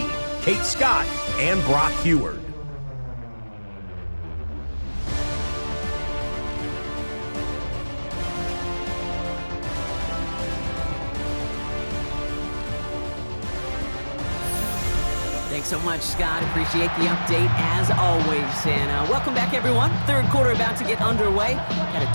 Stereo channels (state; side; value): inverted; both; correlation -1.00